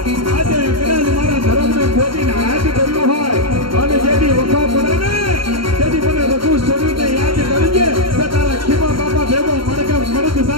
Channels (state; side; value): late; left; 0.73 ms